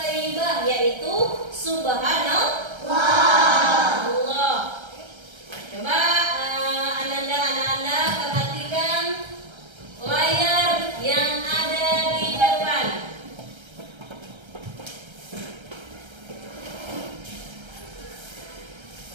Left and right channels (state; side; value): late; left; 1.3 ms